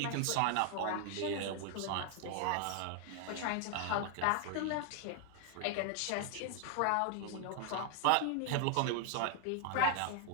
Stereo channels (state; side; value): different; both; correlation 0.00